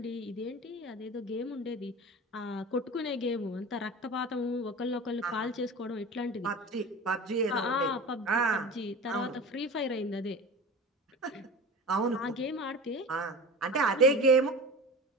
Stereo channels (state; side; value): normal; both; correlation 0.34